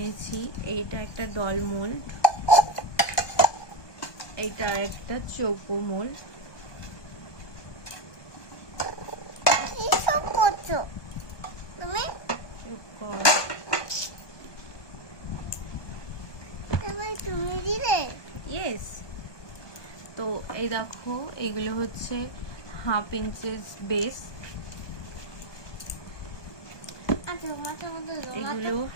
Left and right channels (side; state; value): right; late; 1.2 ms